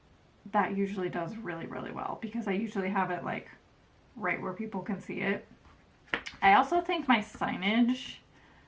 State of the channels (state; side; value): identical; both; correlation 1.00